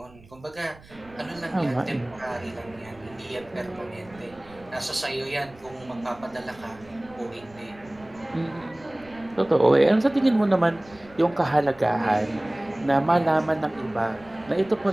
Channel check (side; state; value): right; noise; rumble, 24 dB below the sound